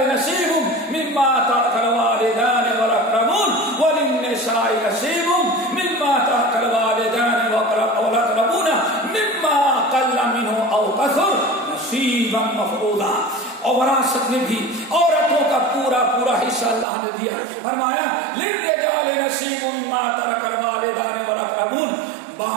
نصیب مما ترک الوالدان والاقربون وللنساء نصیب مما ترک الوالدان والاقربون مما قل منه او كثر نصیبا مفروضا. اور وراثت میں بھی عورتوں کا پورا حصہ اللہ نے دیا. فرمایا للرجال نصیب مما ترک الوالدان والاقربون،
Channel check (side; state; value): left; drops out; at 16.9 s